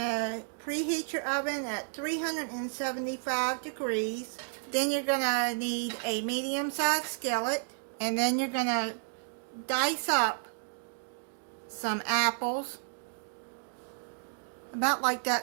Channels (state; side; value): silent; left; digital silence